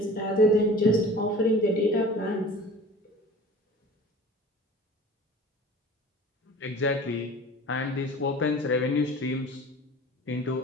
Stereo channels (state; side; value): normal; both; correlation 0.42